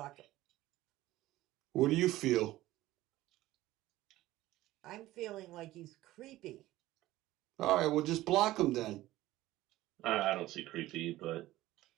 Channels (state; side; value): quieter; left; 16.3 dB